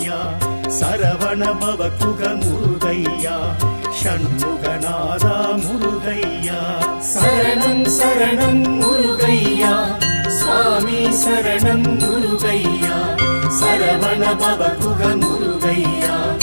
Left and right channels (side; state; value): both; inverted; correlation -1.00